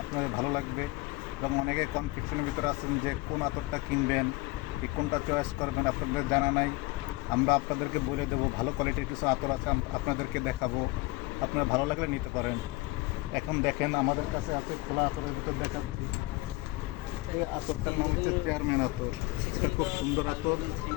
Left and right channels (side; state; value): right; quieter; 21.8 dB